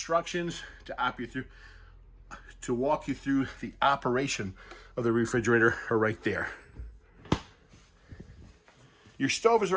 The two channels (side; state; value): both; identical; correlation 1.00